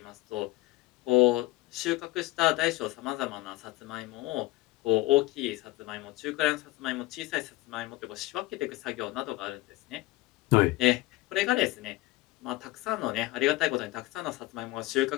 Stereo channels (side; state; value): right; quieter; 19.1 dB